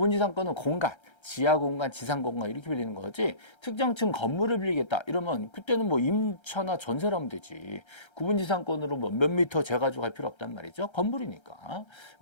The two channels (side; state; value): right; late; 1.3 ms